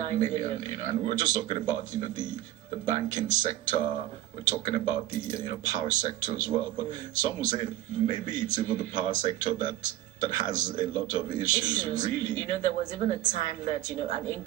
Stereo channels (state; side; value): quieter; left; 14.1 dB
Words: million. You know, and we're just talking about the banking sector. We're talking about the power sector as well. But some will say maybe it's even the power sector that has a lot of issues. Really. There was even a time that an